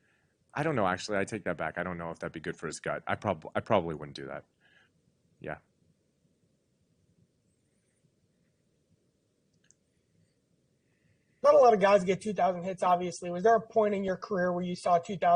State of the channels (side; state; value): both; identical; correlation 1.00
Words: I don't know, actually. I take that back. I don't know if that'd be good for his gut. I probably wouldn't do that. Yeah. Not a lot of guys get 2,000 hits, obviously. Was there a point in your career where you saw